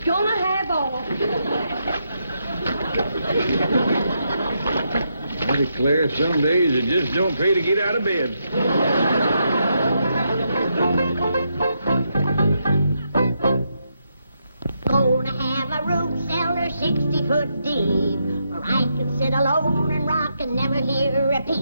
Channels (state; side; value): inverted; both; correlation -0.81